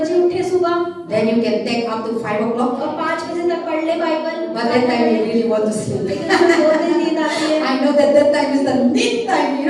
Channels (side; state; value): both; identical; correlation 1.00